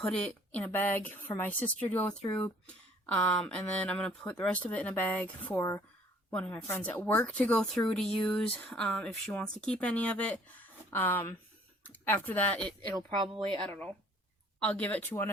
it in a bag for my sister to go through, and then I'm going to put the rest of it in a bag for one of my friends at work to go through to use, if she wants to keep any of it. After that, it'll probably, I don't know, I'll give it to one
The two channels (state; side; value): normal; both; correlation 0.57